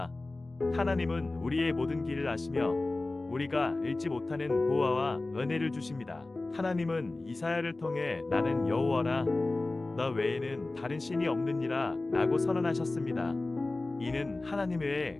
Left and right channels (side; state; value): right; quieter; 3.1 dB